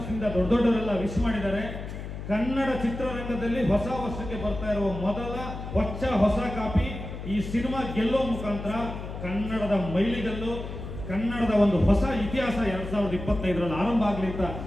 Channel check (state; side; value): noise; left; hum, 8 dB below the sound